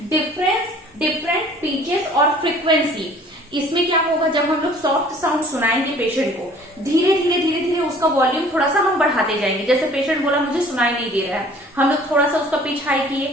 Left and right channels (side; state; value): both; normal; correlation 0.52